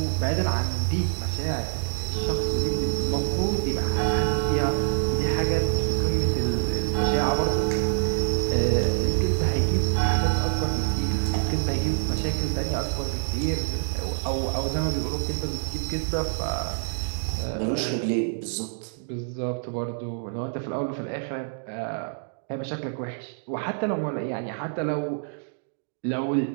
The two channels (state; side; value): silent; left; digital silence